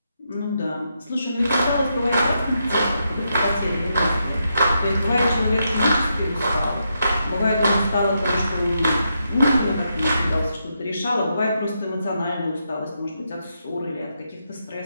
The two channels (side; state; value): both; inverted; correlation -0.82